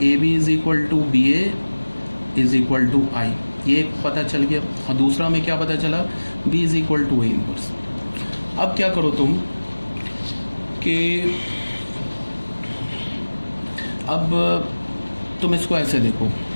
A B is equal to B A is equal to I, ये पता चल गया। और दूसरा हमें क्या पता चला, B is equal to A inverse. अब क्या करो तुम कि अब तुम इसको ऐसे देखो,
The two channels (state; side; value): inverted; both; correlation -1.00